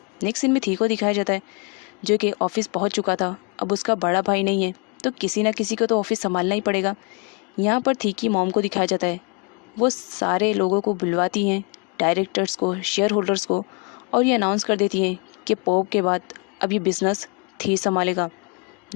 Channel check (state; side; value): quieter; right; 31.6 dB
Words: नेक्स्ट सीन में थी को दिखाया जाता है जो कि ऑफिस पहुंच चुका था। अब उसका बड़ा भाई नहीं है तो किसी ना किसी को तो ऑफिस संभालना ही पड़ेगा। यहाँ पर थी की मॉम को दिखाया जाता है, वो सारे लोगों को बुलवाती हैं, डायरेक्टर्स को, शेयर होल्डर्स को, और ये अनाउंस कर देती हैं कि पॉप के बाद अब ये बिज़नेस थी संभालेगा।